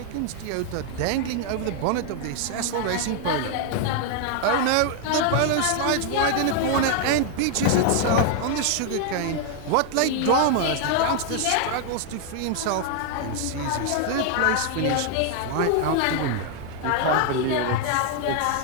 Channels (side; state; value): both; different; correlation 0.00